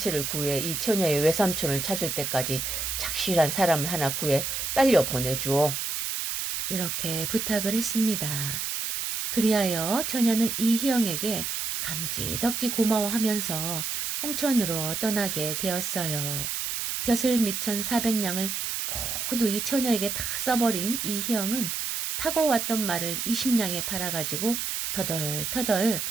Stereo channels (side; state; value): right; noise; hiss, 2 dB below the sound